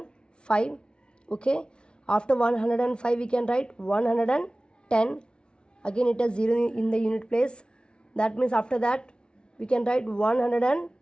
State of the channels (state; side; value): late; right; 0.056 ms